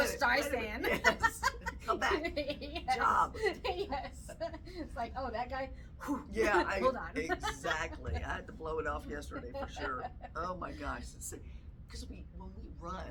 wait a minute. Streisand. Yes. Come back. Yes. Job. Yes. It's like, oh, that guy. Whew. Yeah, Hold on. exactly. I had to blow it off yesterday for sure. Oh my gosh. Because when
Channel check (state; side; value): identical; both; correlation 1.00